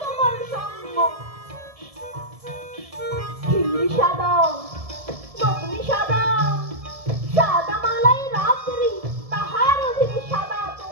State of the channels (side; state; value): left; late; 1.7 ms